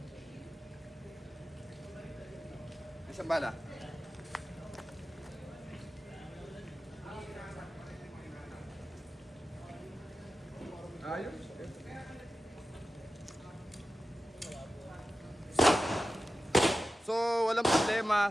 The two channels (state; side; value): normal; both; correlation 0.93